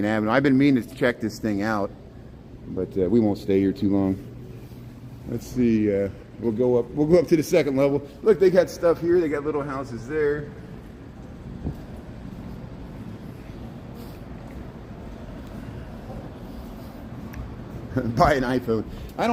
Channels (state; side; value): identical; both; correlation 1.00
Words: Avenue. I've been meaning to check this thing out, but we won't stay here too long. Let's see. We'll go up to the second level. Look, they got stuff here. They got little houses there. Buy an iPhone. I